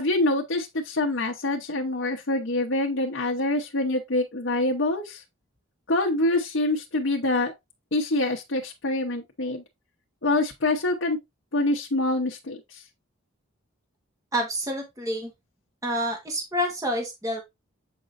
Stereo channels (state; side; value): normal; both; correlation 0.04